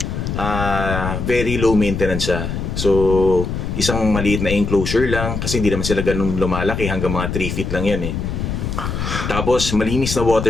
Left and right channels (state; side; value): noise; left; rumble, 3 dB below the sound